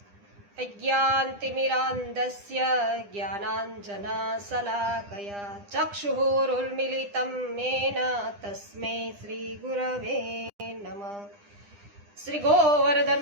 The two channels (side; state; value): left; late; 9.9 ms